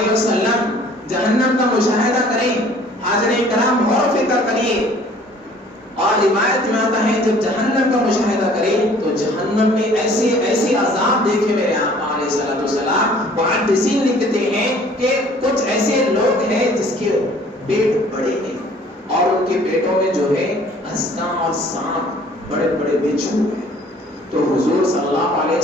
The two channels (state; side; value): normal; both; correlation 0.54